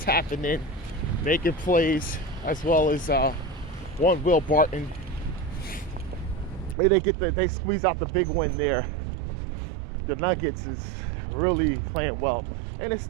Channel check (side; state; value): left; drops out; at 6.8 s